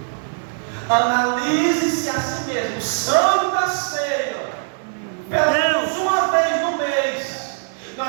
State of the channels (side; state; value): left; silent; digital silence